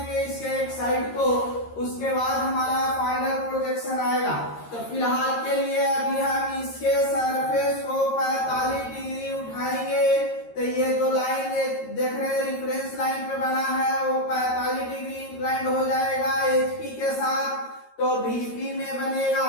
इसके एक साइड को। उसके बाद हमारा फाइनल प्रोजेक्शन आएगा। तो फिलहाल के लिए अभी हम इसके सरफेस को 45 डिग्री उठाएंगे। तो ये जो लाइन देख रहे हैं रिफरेंस लाइन पे बना है वो 45 डिग्री इंक्लाइंड हो जाएगा एचपी के साथ, तो बीपी में बनेगा।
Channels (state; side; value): late; right; 13 ms